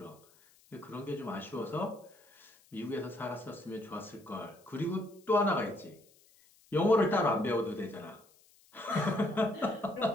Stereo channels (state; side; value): noise; left; hiss, 29 dB below the sound